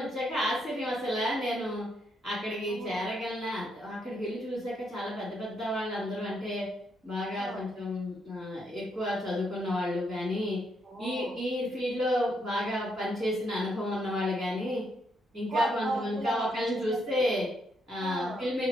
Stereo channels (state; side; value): normal; both; correlation 0.76